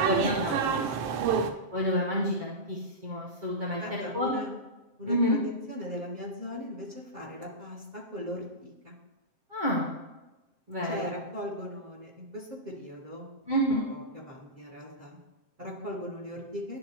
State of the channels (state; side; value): late; left; 7.6 ms